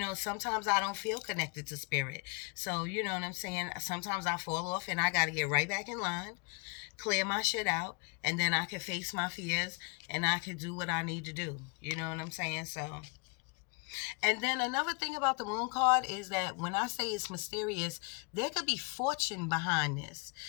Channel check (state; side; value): quieter; right; 33.4 dB